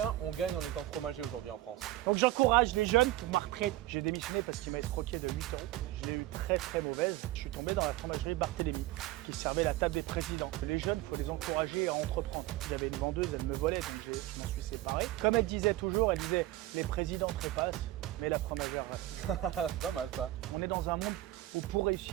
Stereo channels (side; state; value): left; quieter; 15.7 dB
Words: on gagne en étant fromager aujourd'hui en France? Donc, j'encourage les jeunes pour ma retraite. J'ai démissionné parce qu'il m'a escroqué de 8 euros. Je l'ai eu très très mauvaise. Je suis tombé dans la fromagerie Barthélemy qui servait la table des présidents. Les jeunes, il faut les encourager à entreprendre. Il y avait une vendeuse, elle me volait, donc je m'en suis séparé. Comme elle disait toujours, elle disait les présidents trépassent, mais la fromagère reste. C'est pas mal ça. On est dans un monde où pour